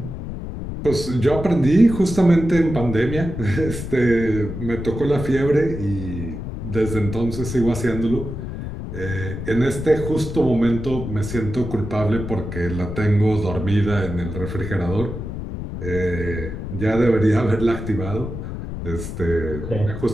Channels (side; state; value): left; noise; rumble, 7 dB below the sound